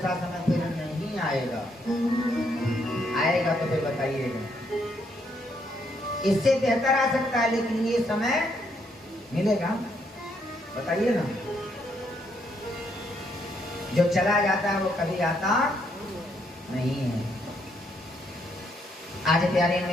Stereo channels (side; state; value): both; normal; correlation 0.73